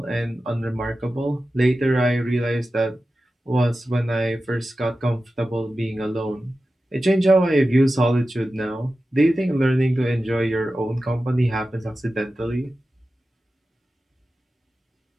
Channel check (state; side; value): normal; both; correlation 0.93